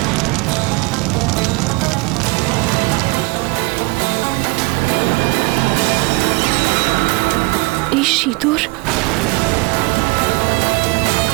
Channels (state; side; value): quieter; left; 24.9 dB